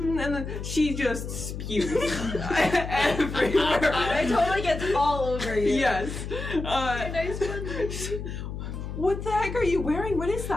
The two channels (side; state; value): left; noise; hum, 7 dB below the sound